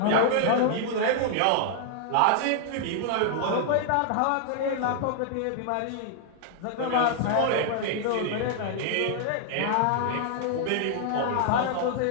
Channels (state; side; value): different; both; correlation 0.00